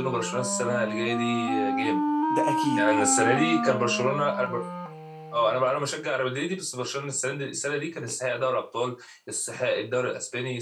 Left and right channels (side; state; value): both; identical; correlation 1.00